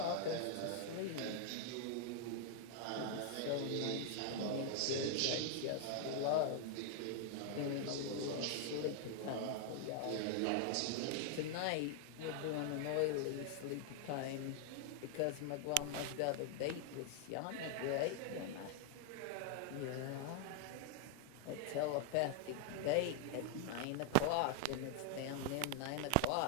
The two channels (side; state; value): both; different; correlation 0.00